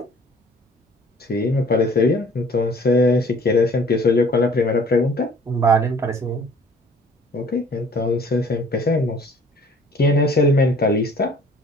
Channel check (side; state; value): both; normal; correlation 0.53